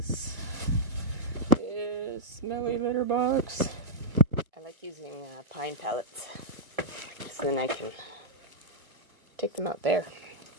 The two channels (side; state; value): left; late; 2.1 ms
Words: This smelly litter box. I like using pine pellets, so then I can take them out there